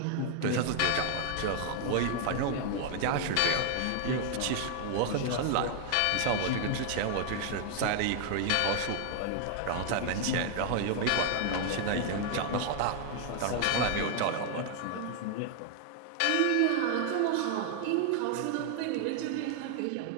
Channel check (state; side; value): different; both; correlation 0.00